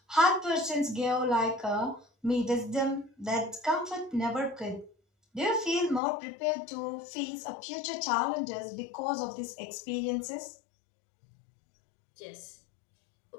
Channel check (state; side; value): drops out; right; at 6.0 s